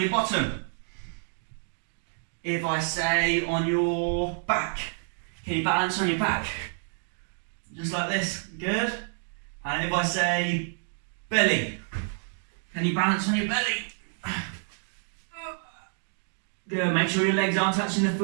bottom? If I say on your back, can you balance on your back? Just like this, good. And if I say belly, can you balance on your belly? Good, make sure your legs aren't touching the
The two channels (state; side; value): silent; left; 59 dB below the other